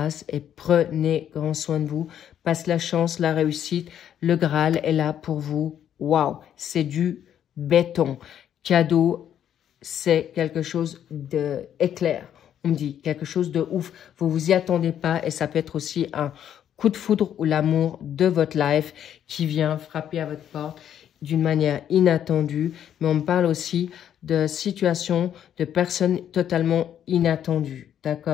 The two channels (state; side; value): quieter; right; 9.9 dB